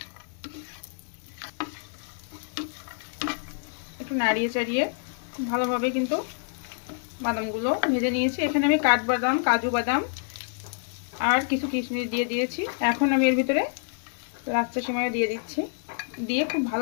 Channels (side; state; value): right; silent; 60 dB below the other